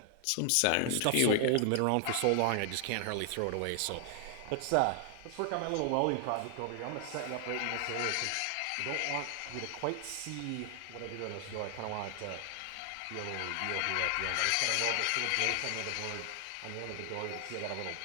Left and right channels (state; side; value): different; both; correlation 0.00